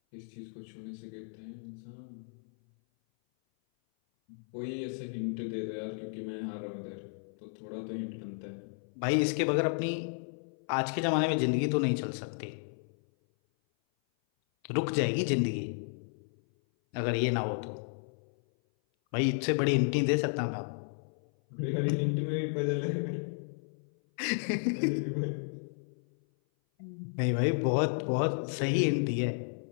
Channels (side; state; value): right; silent; 56 dB below the other